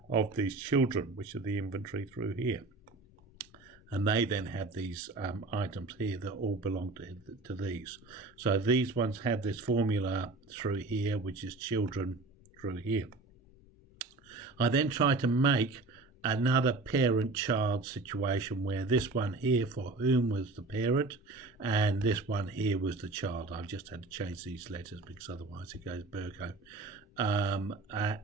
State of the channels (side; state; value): left; quieter; 3.4 dB